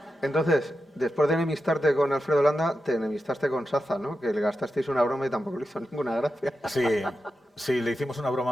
Entonces, después de enemistarte con Alfredo Landa, te enemistaste con Saza, ¿no? Que le gastasteis una broma y tampoco le hizo ninguna gracia. Sí, le hicimos una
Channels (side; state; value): both; normal; correlation 0.89